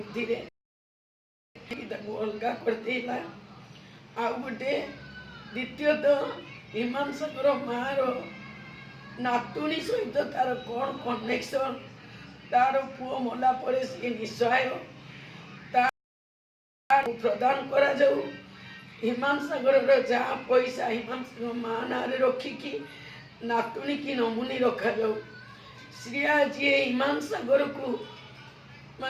अलगा करदेला आउ गोटे द्वितीयतः हिमांशकर माँ नातुणी सहित तार कौन कनेक्शन तार पुओ मला परे सी निस्सहाय प्रदान करा जाऊ हिमांशकर जहाँ पैसा हिमांशकर माँ ना रखिकी नातुणी की नमुनी रखा जाऊ श्रिया जी हिमांशकर को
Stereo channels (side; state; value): both; identical; correlation 1.00